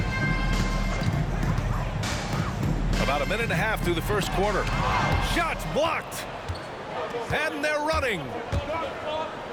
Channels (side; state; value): both; identical; correlation 1.00